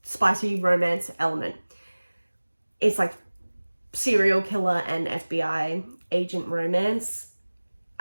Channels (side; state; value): both; inverted; correlation -1.00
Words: spicy romance element. It's like serial killer and FBI agent romance,